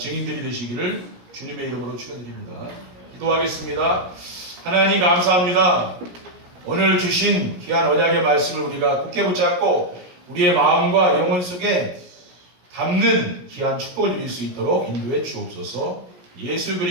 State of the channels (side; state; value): left; late; 17 ms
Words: 되시기를 주님의 이름으로 축원드립니다. 기도하겠습니다. 하나님 감사합니다. 오늘 주신 귀한 언약의 말씀을 우리가 굳게 붙잡고 우리의 마음과 영혼 속에 담는 귀한 축복을 누릴 수 있도록 인도해 주옵소서. 예수